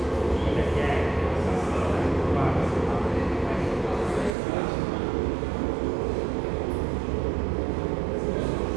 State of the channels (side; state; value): left; drops out; at 4.3 s